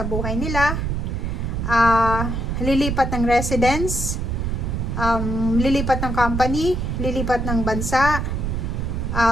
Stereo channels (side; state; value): right; noise; rumble, 1 dB below the sound